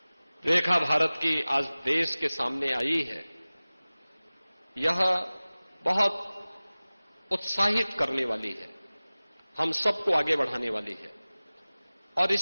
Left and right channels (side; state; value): both; inverted; correlation -0.98